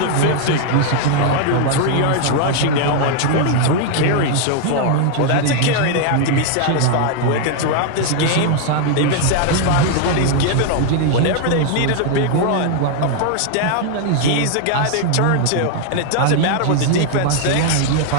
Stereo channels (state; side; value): different; both; correlation 0.00